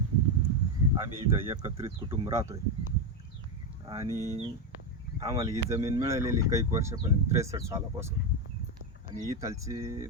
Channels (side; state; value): both; normal; correlation 0.09